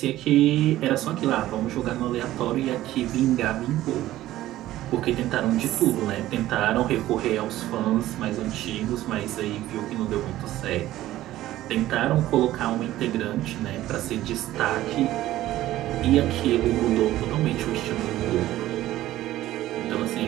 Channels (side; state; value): left; quieter; 14.8 dB